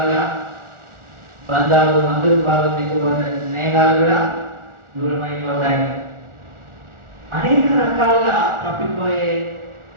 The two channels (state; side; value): late; left; 1.4 ms